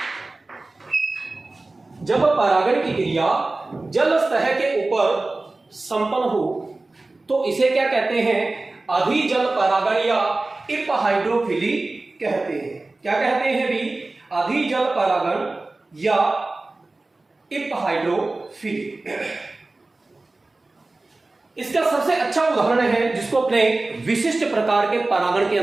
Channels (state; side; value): quieter; left; 3.2 dB